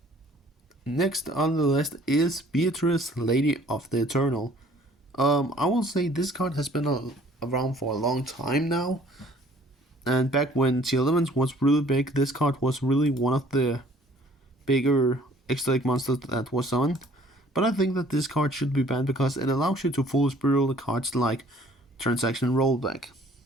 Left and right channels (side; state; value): both; normal; correlation 0.55